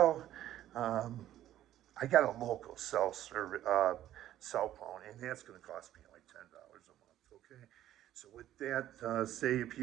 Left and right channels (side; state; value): left; quieter; 12.7 dB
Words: Um, I got a local cell phone, and that's going to cost me like $10 a month. Okay, so with that, say if